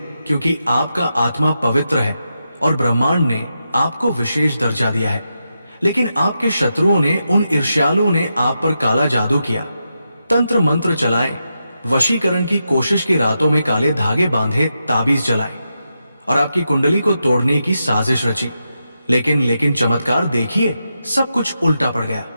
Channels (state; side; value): inverted; both; correlation -0.87